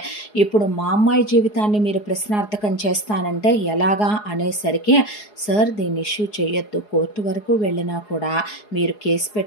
ఇప్పుడు మా అమ్మాయి జీవితాన్ని మీరు ప్రశ్నార్థకం చేస్తానంటే ఎలాగా అనేసరికి, సార్ దీన్ని ఇష్యూ చేయొద్దు, కోర్టు వరకు వెళ్ళినా కూడా మీరు కేసు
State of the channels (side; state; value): right; late; 4.8 ms